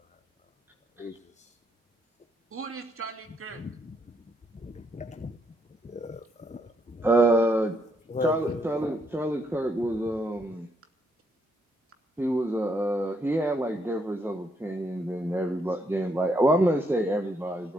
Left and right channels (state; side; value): normal; both; correlation 0.74